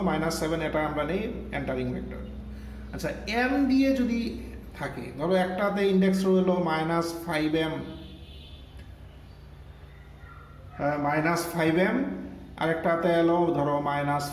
-7, এটা আমরা নিই এন্টারিং ভেক্টর। আচ্ছা, এম দিয়ে যদি থাকে, ধরো একটাতে ইন্ডেক্স রইলো -5m আরেকটাতে এলো ধরো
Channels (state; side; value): identical; both; correlation 1.00